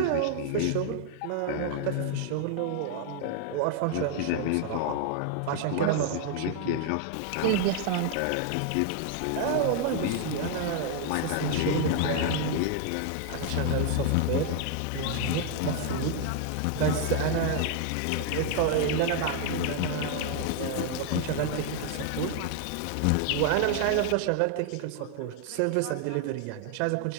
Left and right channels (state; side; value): different; both; correlation 0.00